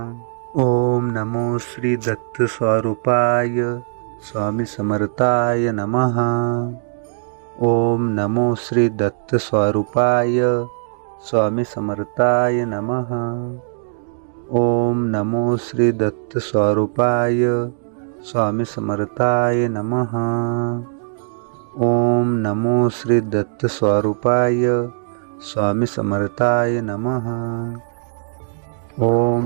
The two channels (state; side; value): silent; left; digital silence